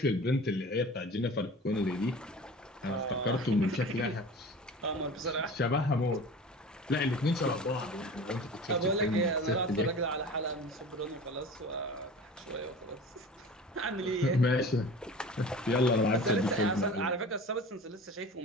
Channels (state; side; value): normal; both; correlation 0.38